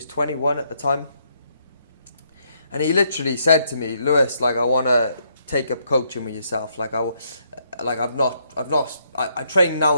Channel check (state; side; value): inverted; both; correlation -0.74